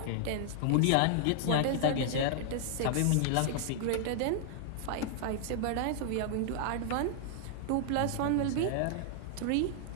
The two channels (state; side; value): different; both; correlation -0.01